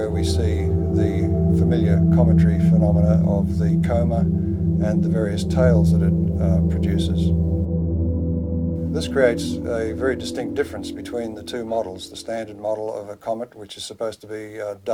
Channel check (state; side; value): identical; both; correlation 1.00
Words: we see the familiar cometary phenomena of the coma and the various tails that it produces. This creates a very distinct difference between the two models, the standard model of a comet, which is supposed to be